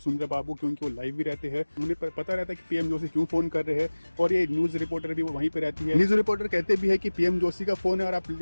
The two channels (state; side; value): inverted; both; correlation -1.00